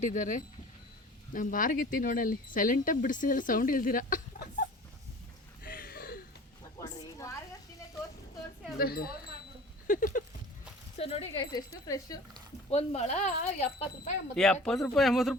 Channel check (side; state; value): both; normal; correlation 0.43